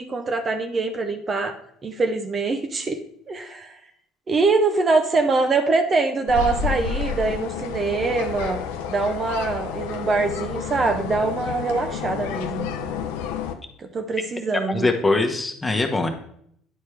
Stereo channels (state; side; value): normal; both; correlation 0.68